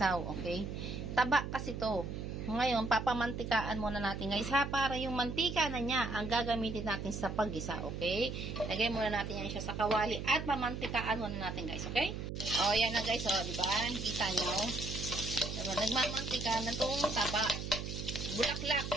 Okay? Taba kasi to. Ngayon, papamantikaan muna natin guys ha, para yung mantika na niya ang gagamitin natin sa paggisa, okay? Lagay muna natin yan siya sa kawali at pamantikaan muna natin guys, okay? O, yan na guys, o, diba? Kita nyo? Diba? Nagmamantika na itong taba. Bulaklak,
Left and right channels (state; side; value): noise; right; hum, 6 dB below the sound